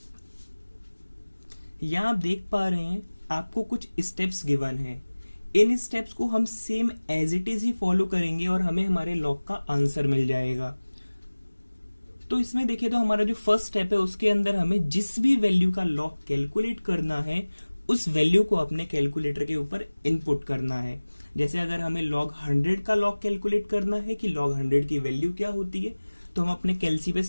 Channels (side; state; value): both; inverted; correlation -1.00